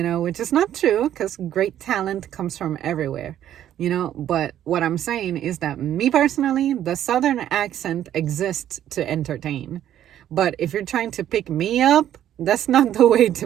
is not true, because great talent comes from everywhere. But what I'm saying is that me personally, the Southern accent exists to entertain. But if you're trying to pick me up, that's not the way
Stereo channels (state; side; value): quieter; left; 11.3 dB